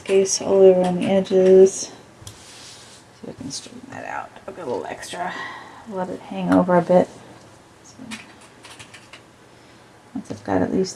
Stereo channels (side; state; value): both; identical; correlation 1.00